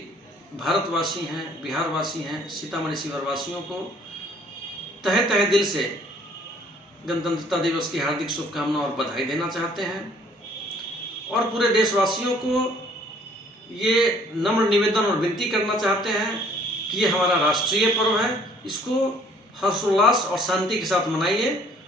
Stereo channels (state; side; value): normal; both; correlation 0.58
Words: भारतवासी हैं, बिहारवासी हैं, सीतामढ़ी शिवहर वासियों को तहे तहे दिल से गणतंत्रता दिवस की हार्दिक शुभकामनाएं और बधाई देना चाहते हैं, और पूरे देशवासियों को ये नम्र निवेदन और विनती करना चाहते हैं कि ये हमारा राष्ट्रीय पर्व है, इसको हर्षोल्लास और शांति के साथ मनाइए,